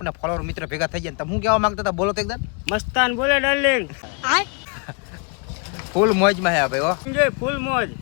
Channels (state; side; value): quieter; right; 35.4 dB